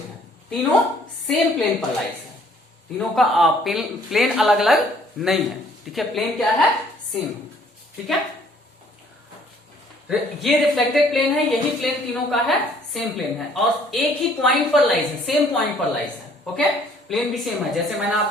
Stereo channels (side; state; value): both; normal; correlation 0.60